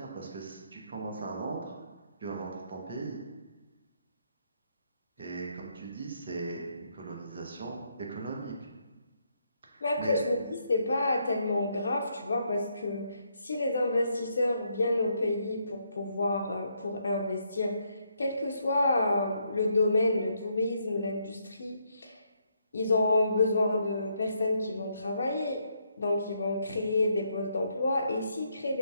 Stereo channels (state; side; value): inverted; both; correlation -0.75